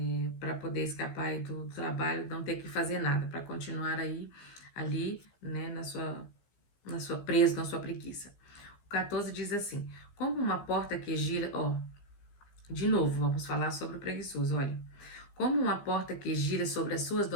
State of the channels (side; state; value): right; late; 15 ms